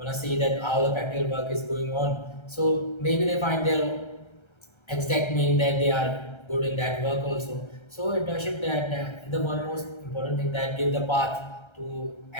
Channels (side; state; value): right; late; 1.3 ms